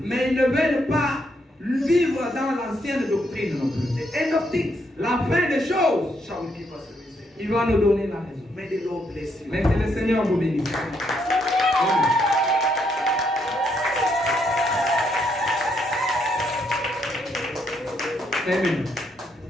Mais ils ne veulent pas vivre dans l'ancienne doctrine non plus. The end of things La fin des choses, shall give us a reason. il va nous donner la raison. May the Lord bless you. Mais que le Seigneur vous bénisse. Amen.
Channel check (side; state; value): both; normal; correlation 0.75